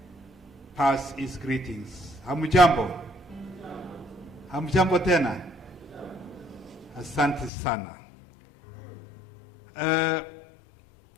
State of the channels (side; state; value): right; drops out; at 7.5 s